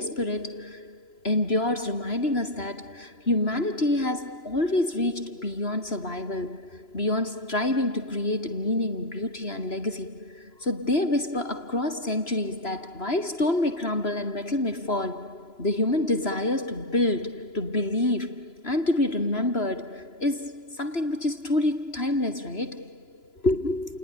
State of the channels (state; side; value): late; right; 3.0 ms